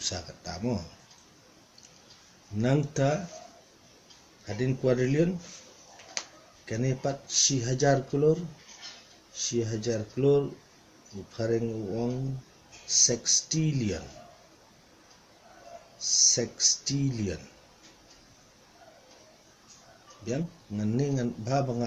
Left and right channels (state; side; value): identical; both; correlation 1.00